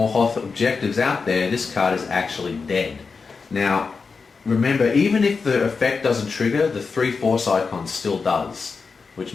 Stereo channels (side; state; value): right; quieter; 4.8 dB